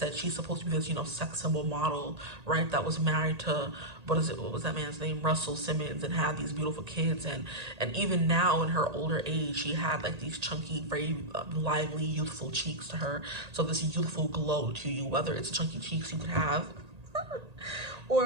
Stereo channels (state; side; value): late; left; 1.8 ms